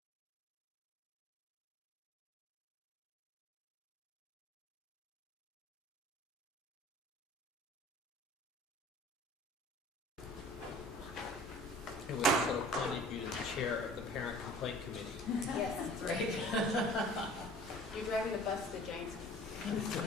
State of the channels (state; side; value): normal; both; correlation 0.47